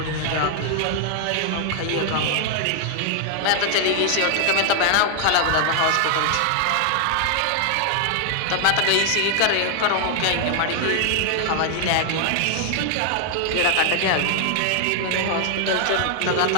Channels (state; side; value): different; both; correlation 0.00